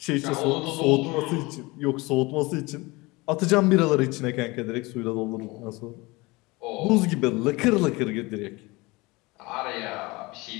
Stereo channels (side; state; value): right; quieter; 23.4 dB